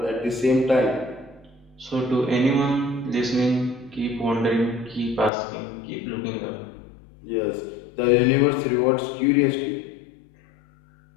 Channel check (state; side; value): drops out; right; at 5.3 s